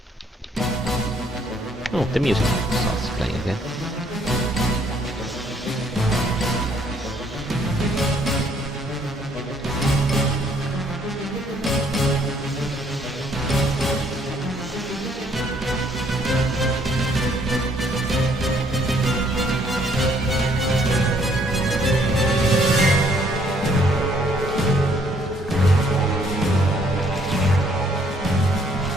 Oh, the music starts playing again.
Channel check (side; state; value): both; normal; correlation 0.65